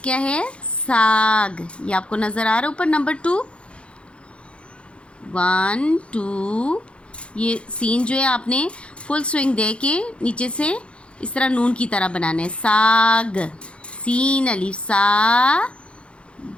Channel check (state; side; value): late; right; 0.059 ms